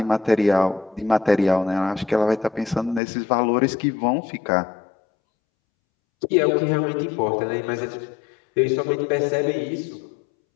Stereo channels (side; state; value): right; drops out; at 3.0 s